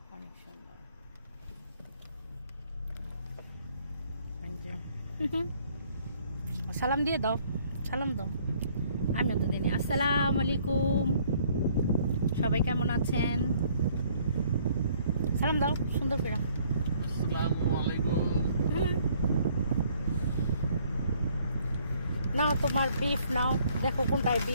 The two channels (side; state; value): both; inverted; correlation -0.62